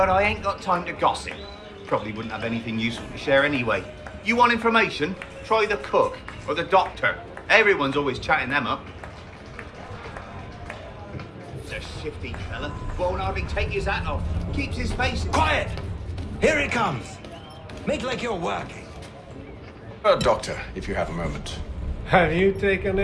I ain't got time to gossip. Probably wouldn't have anything useful to share anyway. You want information? Try the cook or the doctor. Everyone's always chatting them up. It's a shifty fella. Won't hardly take his hat off. Keeps his face... Quiet! Here he comes. Make like you're working. Doctor, if you have a moment. Have you taken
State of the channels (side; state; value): both; identical; correlation 1.00